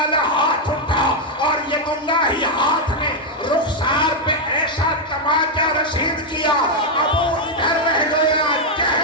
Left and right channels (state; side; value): normal; both; correlation 0.01